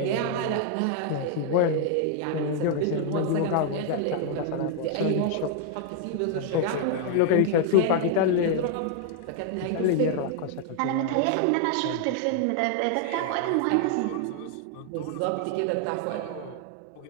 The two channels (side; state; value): both; different; correlation 0.00